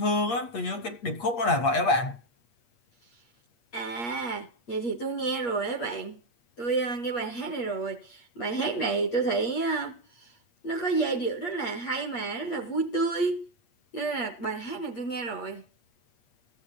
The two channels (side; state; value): right; late; 8.4 ms